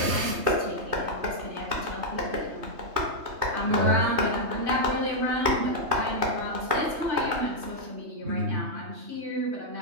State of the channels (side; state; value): left; late; 3.2 ms